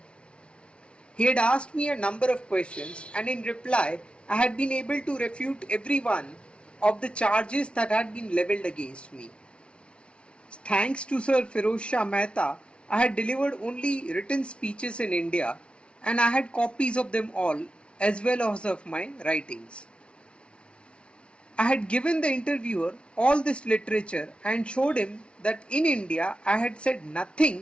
He had asked me a number of questions, and in reply, I had been able to refute every one of the charges that had been levelled against me. Thanks to Sir Firoz Shah Mehta, I had delivered only written speeches in India, and I had copies of them all, as well as of my writings. I had given the interviewer all this literature and showed him that in India I had said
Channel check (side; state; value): right; late; 0.059 ms